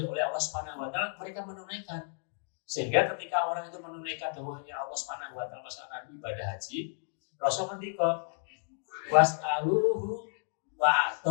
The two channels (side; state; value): right; silent; 56 dB below the other